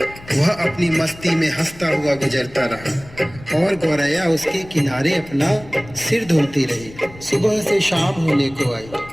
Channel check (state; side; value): noise; left; rumble, 19 dB below the sound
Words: वह अपनी मस्ती में हंसता हुआ गुजरता रहा और गौरैया उसके किनारे अपना सिर धुलती रही। सुबह से शाम होने को आई।